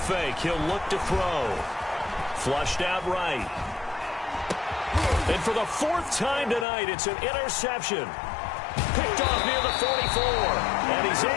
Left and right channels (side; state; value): right; drops out; at 6.7 s